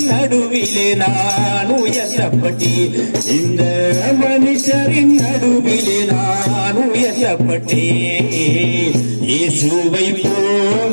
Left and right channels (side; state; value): both; inverted; correlation -1.00